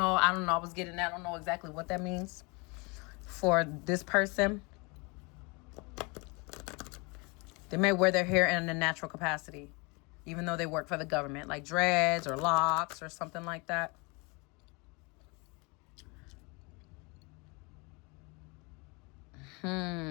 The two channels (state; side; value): quieter; right; 29.1 dB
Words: I was getting that. I don't know exactly what that means for this person. They may wear their hair in a natural capacity, even though they work for the government, like dreads or locks or something like that.